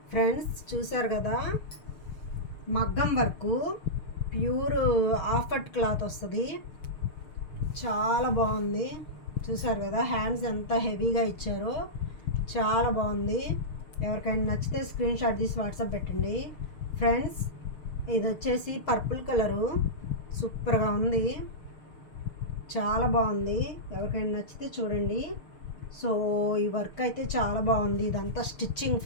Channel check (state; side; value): late; right; 6.5 ms